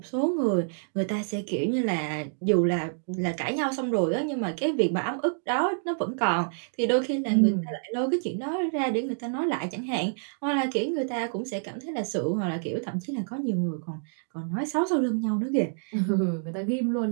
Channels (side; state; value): left; silent; digital silence